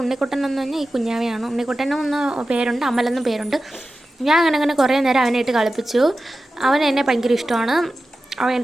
ഉണ്ണിക്കുട്ടൻ എന്ന് പറഞ്ഞാൽ ഈ കുഞ്ഞാവയാണ്. ഉണ്ണിക്കുട്ടനും ഒന്ന് പേരുണ്ട്, അമലെന്നും പേരുണ്ട്. ഞാൻ അങ്ങനെ കുറേ നേരം അവനെ ഇട്ട് കളിപ്പിച്ചു. അവൻ എന്നെ ഭയങ്കര ഇഷ്ടമാണ്. അവൻ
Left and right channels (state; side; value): normal; both; correlation 0.93